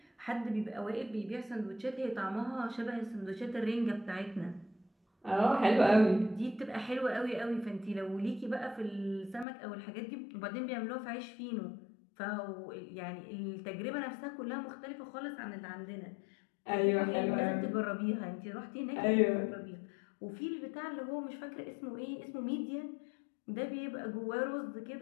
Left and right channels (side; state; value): right; drops out; at 9.5 s